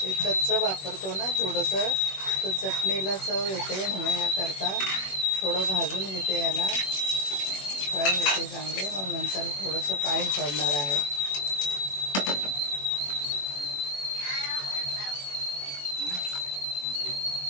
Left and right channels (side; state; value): right; late; 21 ms